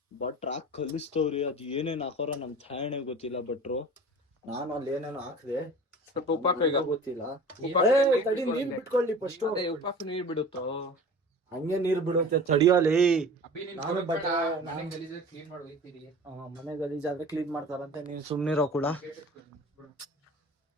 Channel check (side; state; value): both; normal; correlation 0.40